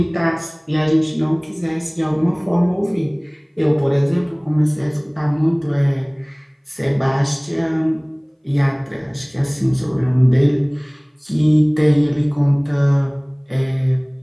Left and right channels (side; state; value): both; identical; correlation 1.00